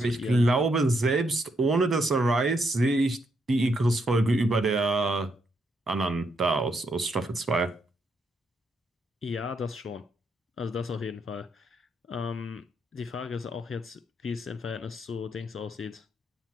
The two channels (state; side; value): normal; both; correlation 0.77